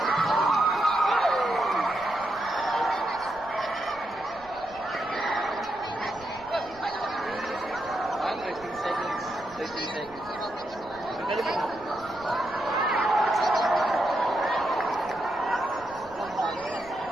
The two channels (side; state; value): right; noise; rumble, 23 dB below the sound